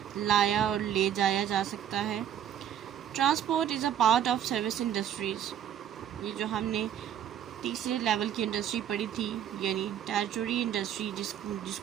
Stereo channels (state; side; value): quieter; left; 9.9 dB